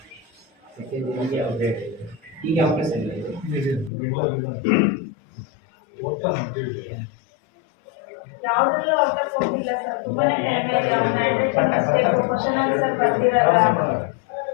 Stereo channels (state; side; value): drops out; right; at 3.9 s